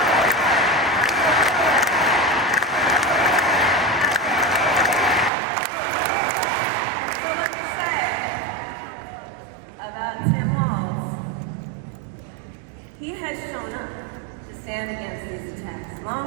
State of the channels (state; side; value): drops out; left; at 5.3 s